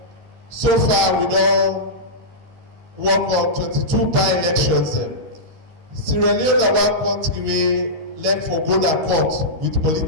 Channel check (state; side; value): late; left; 13 ms